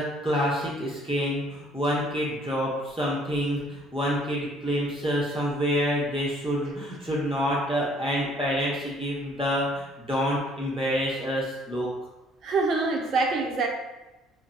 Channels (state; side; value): normal; both; correlation 0.61